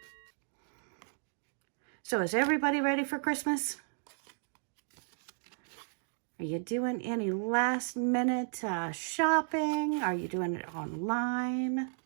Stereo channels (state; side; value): silent; left; digital silence